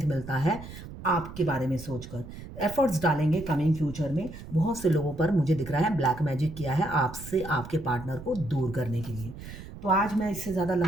मिलता है आपके बारे में सोचकर। एफर्ट्स डालेंगे कमिंग फ्यूचर में। बहुत से लोगों पर मुझे दिख रहा है ब्लैक मैजिक किया है आपसे आपके पार्टनर को दूर करने के लिए। तो आज मैं इससे ज़्यादा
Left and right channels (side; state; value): right; noise; rumble, 13 dB below the sound